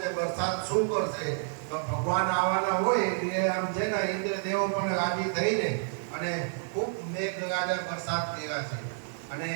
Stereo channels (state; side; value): silent; left; digital silence